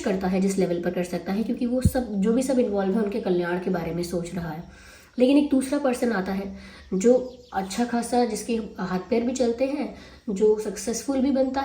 है जिस लेवल पर कर सकता है, क्योंकि वो सब जो भी सब इन्वॉल्व है उनके कल्याण के बारे में सोच रहा है। लेकिन एक दूसरा पर्सन आता है जो अच्छा खासा, जिसके हाथ पैर भी चलते हैं, जो सक्सेसफुल भी बनता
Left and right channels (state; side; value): identical; both; correlation 1.00